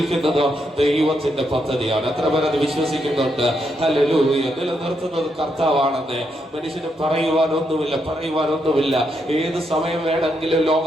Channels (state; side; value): normal; both; correlation 0.79